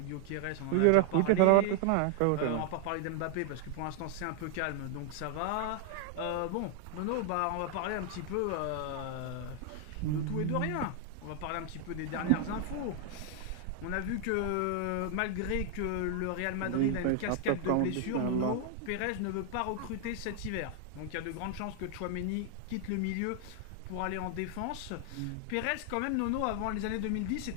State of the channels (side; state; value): both; different; correlation 0.00